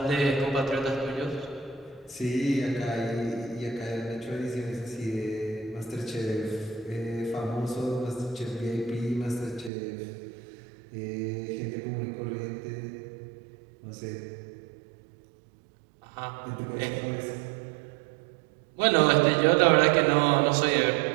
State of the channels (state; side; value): drops out; left; at 9.7 s